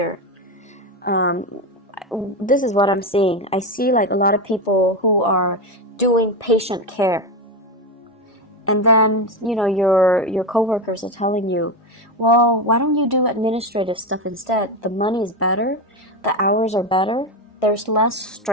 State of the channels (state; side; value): normal; both; correlation 0.15